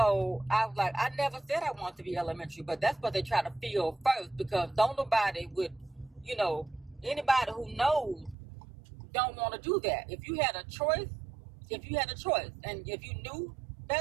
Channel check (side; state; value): left; drops out; at 8.3 s